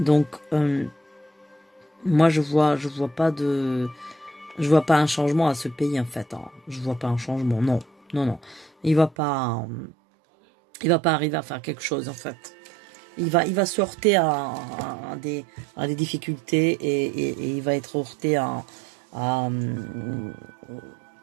moi je vois pas un changement à ce pays en fait. Hein. Je vois pas un changement, non. Il va pas arriver à faire quelque chose en fait. Il va se heurter à des difficultés et il va être heurté à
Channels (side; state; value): left; drops out; at 9.2 s